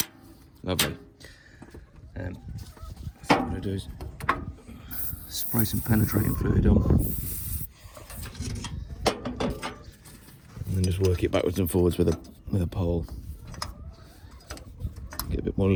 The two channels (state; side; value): identical; both; correlation 1.00